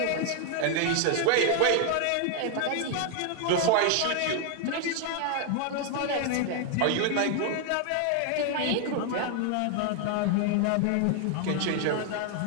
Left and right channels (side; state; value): both; different; correlation 0.00